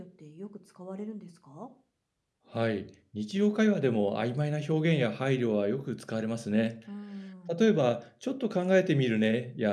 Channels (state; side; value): identical; both; correlation 1.00